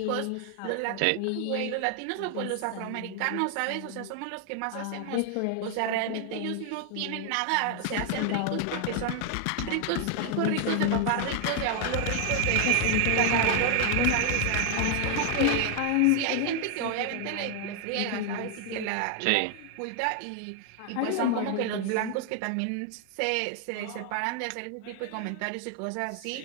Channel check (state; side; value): different; both; correlation 0.00